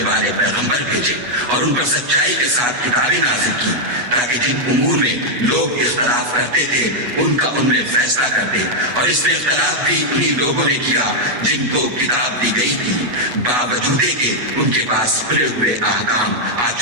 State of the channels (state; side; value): late; left; 8.2 ms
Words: والے پیغمبر بھیجے، اور ان پر سچائی کے ساتھ کتابیں نازل کی، تاکہ جن امور میں لوگ اختلاف کرتے تھے ان کا ان میں فیصلہ کر دے۔ اور اس میں اختلاف بھی انہی لوگوں نے کیا جن کو کتاب دی گئی تھی، باوجود کہ ان کے پاس کھلے ہوئے احکام آ